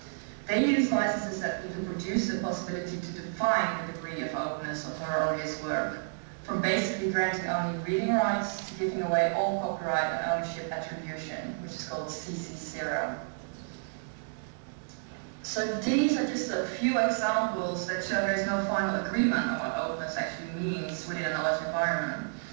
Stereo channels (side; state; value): left; silent; digital silence